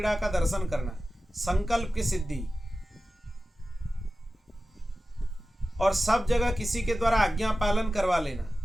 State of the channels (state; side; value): normal; both; correlation 0.95